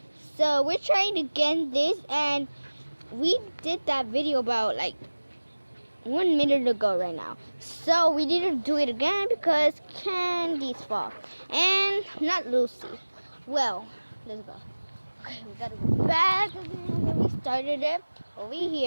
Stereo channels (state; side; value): inverted; both; correlation -1.00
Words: So we're trying again this, and we did that video about like 1 minute ago right now. So we need to do it again because Candy's fault and not Lucy. Well, let's go. Okay, we gotta go back again where we started it over